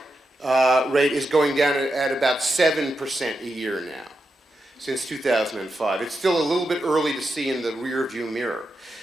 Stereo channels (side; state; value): both; normal; correlation 0.87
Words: rate is going down at about 7% a year now, since 2005. It's still a little bit early to see in the rear view mirror.